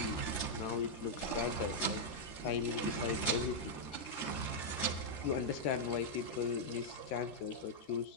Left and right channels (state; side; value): late; right; 13 ms